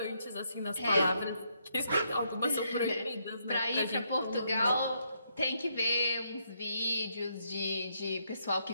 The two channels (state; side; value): inverted; both; correlation -0.76